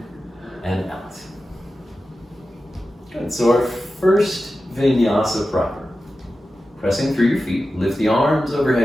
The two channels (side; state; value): both; normal; correlation 0.93